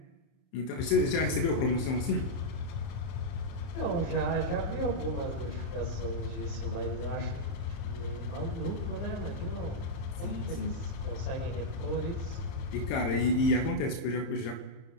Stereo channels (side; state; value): right; late; 30 ms